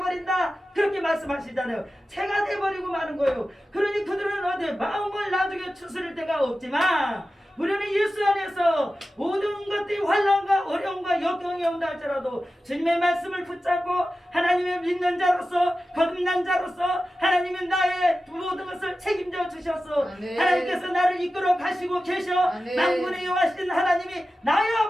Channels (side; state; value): both; normal; correlation 0.94